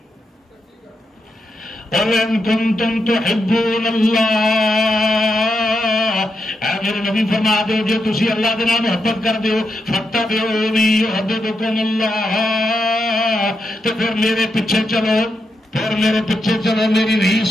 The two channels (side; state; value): both; normal; correlation 0.84